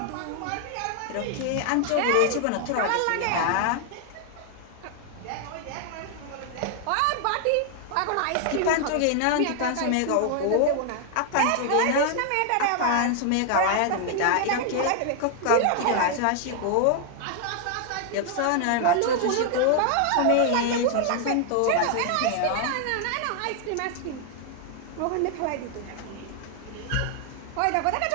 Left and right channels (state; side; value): different; both; correlation 0.00